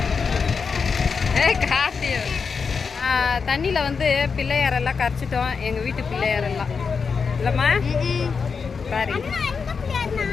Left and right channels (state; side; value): quieter; right; 5.5 dB